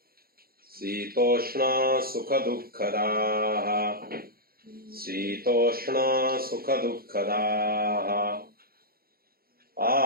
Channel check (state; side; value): late; left; 0.44 ms